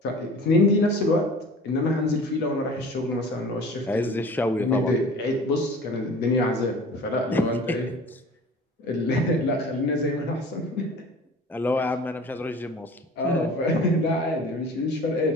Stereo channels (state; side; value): normal; both; correlation 0.43